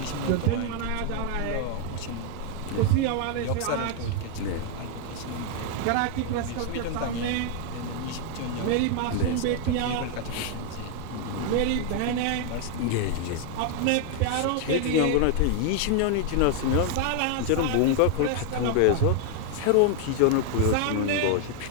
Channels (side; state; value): both; different; correlation 0.00